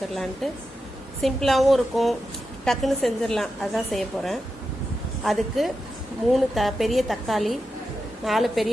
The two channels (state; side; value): normal; both; correlation 0.89